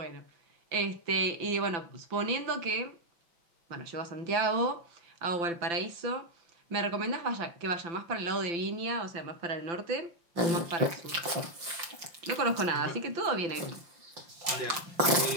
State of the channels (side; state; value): left; late; 5.7 ms